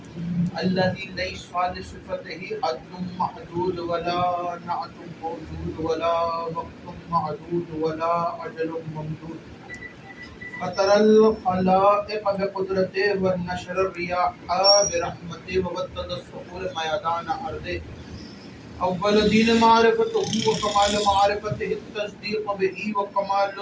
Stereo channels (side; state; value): both; identical; correlation 1.00